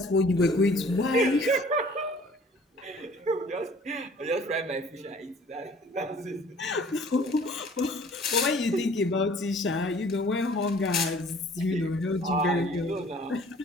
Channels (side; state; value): both; normal; correlation 0.52